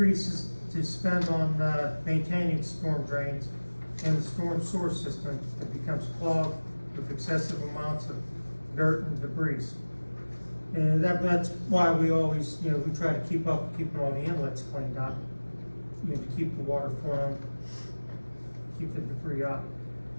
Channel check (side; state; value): both; inverted; correlation -1.00